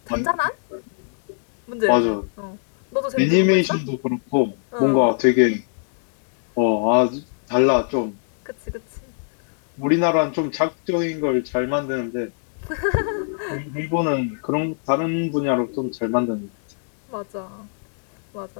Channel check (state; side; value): silent; right; digital silence